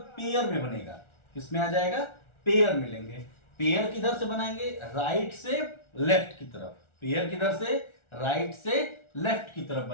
पेयर में बनेगा। किसमें आ जाएगा? पेयर मिलेंगे। पेयर किधर से बनाएंगे? राइट से लेफ्ट की तरफ। पेयर किधर से? राइट से लेफ्ट की तरफ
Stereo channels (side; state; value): right; late; 1.4 ms